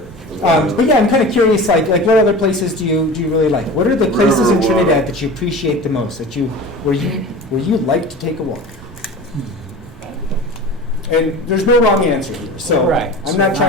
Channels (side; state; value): both; normal; correlation 0.35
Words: But yeah, I'm kind of curious, like what other places do you really like? What are the places in Trinidad that you appreciate the most, where you like to take a walk? And there's no wrong answer here, so Right. I'm not